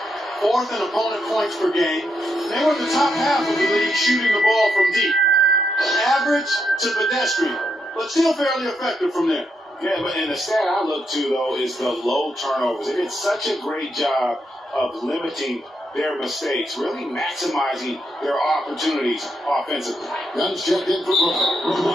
Fourth in opponent points per game. They were in the top half of the league shooting the ball from deep. Average to pedestrian, but still fairly effective from there. Yeah, but and the stat I look to, though, is the low turnovers. They did such a great job of limiting their mistakes, really maximizing their opportunities offensively. Guns checked in for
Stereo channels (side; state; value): both; normal; correlation 0.80